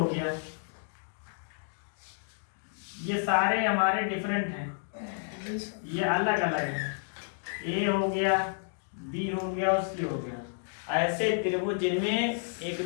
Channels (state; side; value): silent; right; digital silence